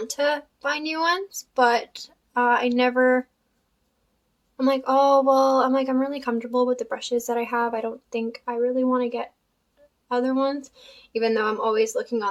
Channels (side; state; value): both; identical; correlation 1.00